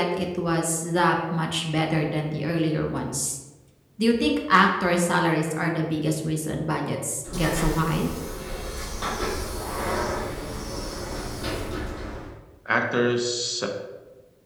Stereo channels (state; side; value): identical; both; correlation 1.00